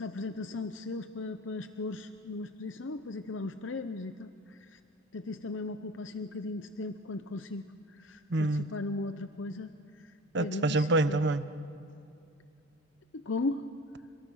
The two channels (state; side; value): normal; both; correlation 0.40